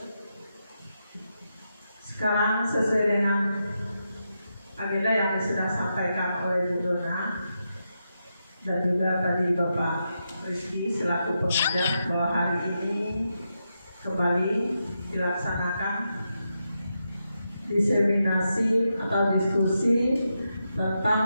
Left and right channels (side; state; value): both; inverted; correlation -0.86